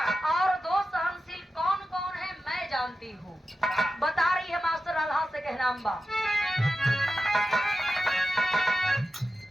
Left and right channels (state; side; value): normal; both; correlation 0.92